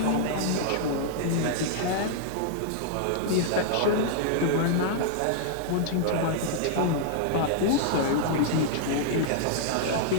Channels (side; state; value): both; different; correlation -0.01